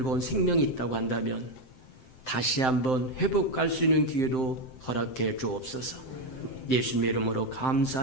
온 생명이 있다고 한다면 다시 한번 회복할 수 있는 기회도 허락해 주옵소서. 예수님의 이름으로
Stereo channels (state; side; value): late; right; 7.7 ms